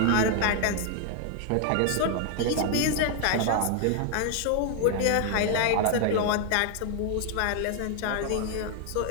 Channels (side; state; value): both; different; correlation 0.00